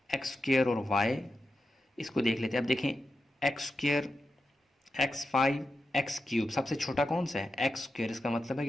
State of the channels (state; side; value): normal; both; correlation 0.89